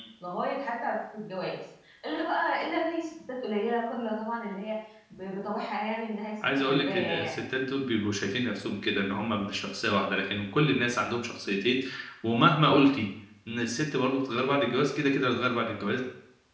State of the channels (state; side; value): identical; both; correlation 1.00